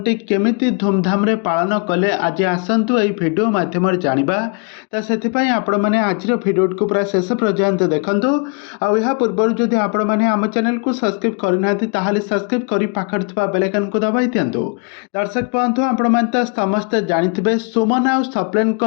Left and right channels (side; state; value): right; quieter; 36.0 dB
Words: କେମିତି ଧୁମଧାମରେ ପାଳନ କଲେ ଆଜି ଆସନ୍ତୁ ଏହି ଭିଡ଼ିଓ ମାଧ୍ୟମରେ ଜାଣିବା। ତ ସେଥିପାଇଁ ଆପଣମାନେ ଆଜିର ଭିଡ଼ିଓଟିକୁ ପୁରା ଶେଷ ପର୍ଯ୍ୟନ୍ତ ଦେଖନ୍ତୁ। ଆଉ ଏହା ପୂର୍ବରୁ ଯଦି ଆପଣମାନେ ଆମ ଚ୍ୟାନେଲକୁ ସବସ୍କ୍ରାଇବ୍ କରିନାହାନ୍ତି ତାହେଲେ ସବସ୍କ୍ରାଇବ୍ କରି ପାଖରେ ଥିବା ବେଲ୍ ଆଇକନକୁ ଦବାଇ ଦିଅନ୍ତୁ। ଦର୍ଶକ ବନ୍ଧୁ, ଆପଣମାନେ ତ ସମସ୍ତେ ଜାଣିଥିବେ ସୁମନ ଆଉ ସପ୍ଲେନଙ୍କ